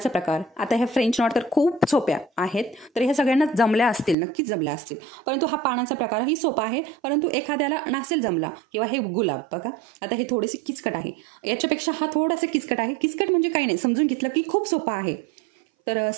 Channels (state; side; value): drops out; left; at 4.2 s